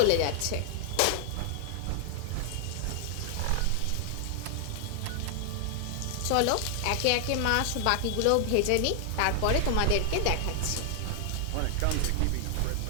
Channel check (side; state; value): both; different; correlation 0.00